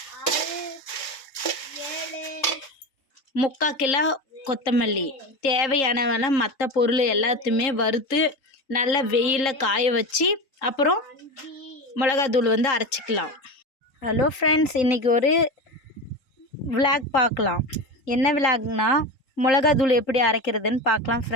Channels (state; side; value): late; right; 3.7 ms